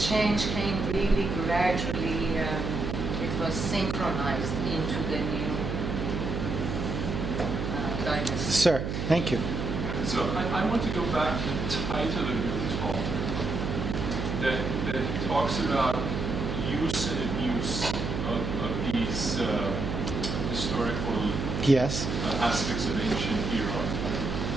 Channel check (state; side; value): noise; right; hum, 3 dB below the sound